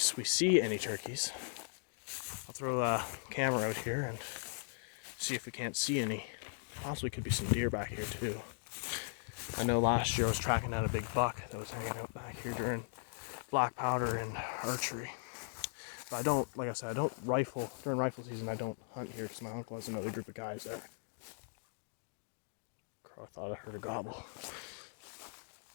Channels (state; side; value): silent; right; digital silence